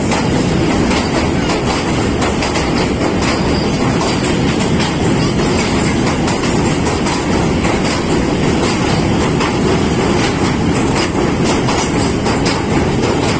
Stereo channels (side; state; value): both; identical; correlation 1.00